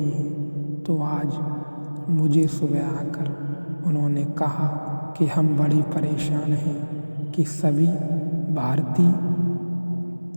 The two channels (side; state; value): both; inverted; correlation -1.00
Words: हैं। तो आज मुझे सुबह आकर उन्होंने कहा कि हम बड़ी परेशान हैं कि सभी भारतीय